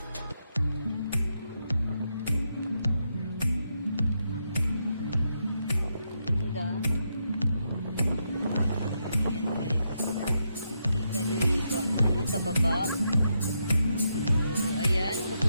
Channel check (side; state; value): both; inverted; correlation -0.82